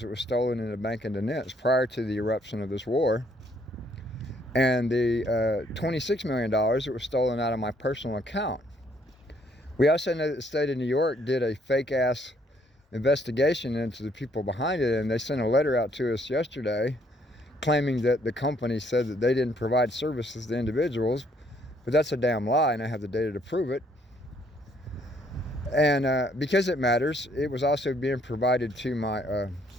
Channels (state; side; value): normal; both; correlation 0.67